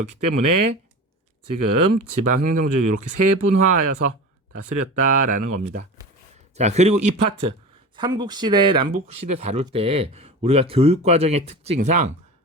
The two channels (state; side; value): normal; both; correlation 0.32